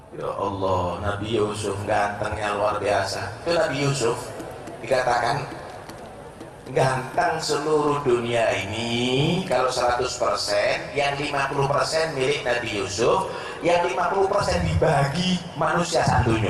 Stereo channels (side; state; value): both; identical; correlation 1.00